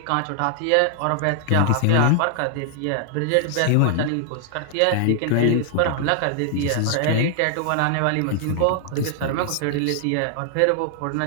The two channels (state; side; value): different; both; correlation 0.00